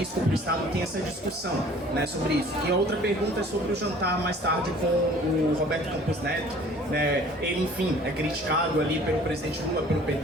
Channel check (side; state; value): both; normal; correlation 0.51